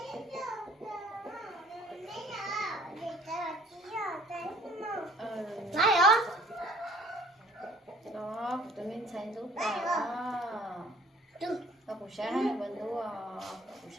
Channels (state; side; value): normal; both; correlation 0.55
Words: buổi nó vẫn đủ buổi